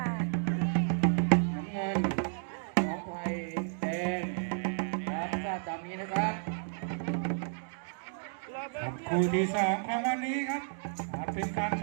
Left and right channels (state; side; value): silent; left; digital silence